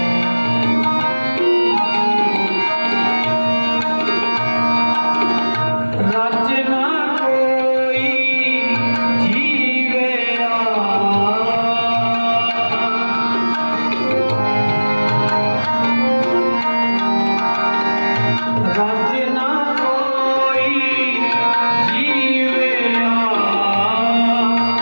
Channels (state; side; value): inverted; both; correlation -1.00